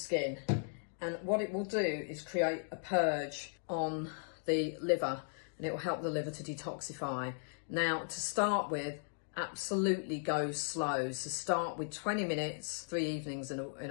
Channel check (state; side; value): silent; right; digital silence